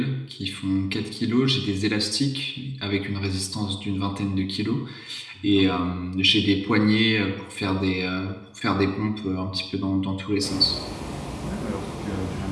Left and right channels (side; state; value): both; identical; correlation 1.00